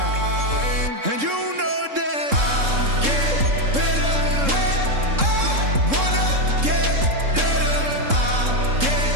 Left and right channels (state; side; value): late; left; 3.7 ms